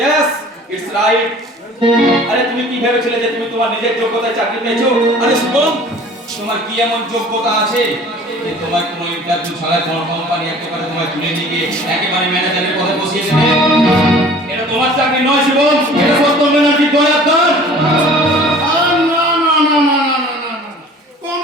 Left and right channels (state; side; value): normal; both; correlation 0.47